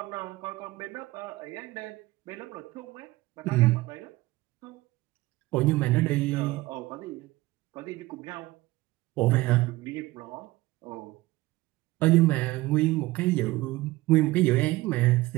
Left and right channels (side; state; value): left; quieter; 19.3 dB